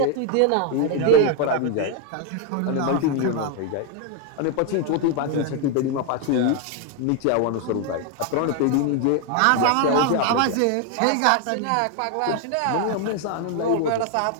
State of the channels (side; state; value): both; different; correlation 0.01